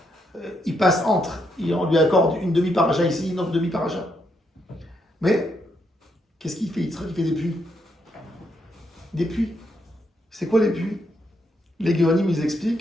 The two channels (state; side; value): normal; both; correlation 0.78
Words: Il passe entre, on lui accorde une demi-paracha ici, une autre demi-paracha. Mais, qu'est-ce qu'il fait Yitzhak? Il fait des puits. Des puits. C'est quoi les puits? Les Géonim, ils